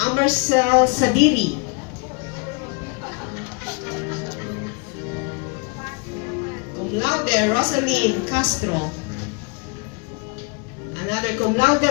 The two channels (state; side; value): quieter; right; 34.0 dB